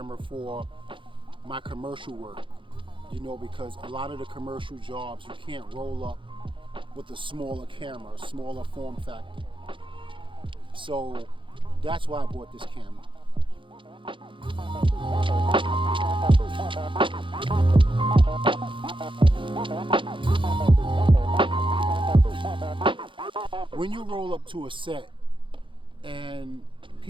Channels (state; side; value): late; left; 0.24 ms